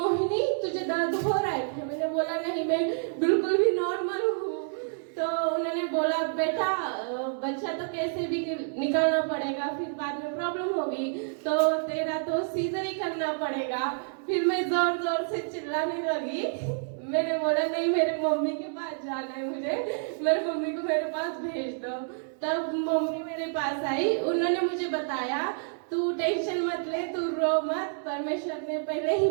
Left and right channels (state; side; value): silent; left; 59 dB below the other